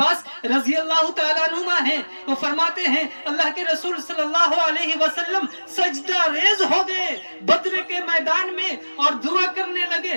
رضی اللہ تعالیٰ عنہما ہیں، وہ فرماتے ہیں اللہ کے رسول صلی اللہ علیہ وسلم سجدہ ریز ہو گئے بدر کے میدان میں اور دعا کرنے لگے،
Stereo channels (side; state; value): both; inverted; correlation -1.00